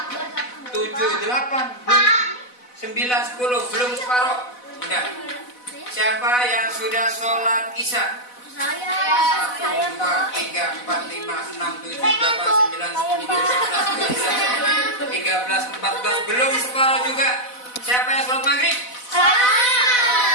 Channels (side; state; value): right; late; 4.0 ms